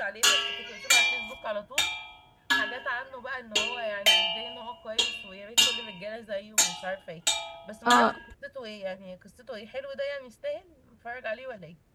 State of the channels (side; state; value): both; identical; correlation 1.00